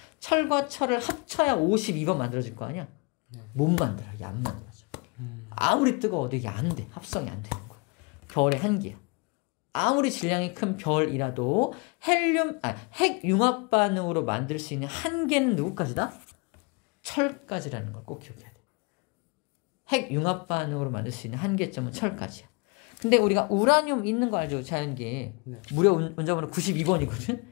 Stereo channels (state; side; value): quieter; right; 30.5 dB